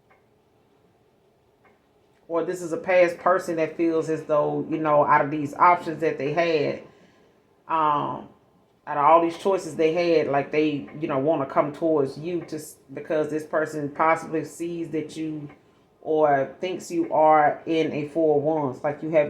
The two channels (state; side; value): identical; both; correlation 1.00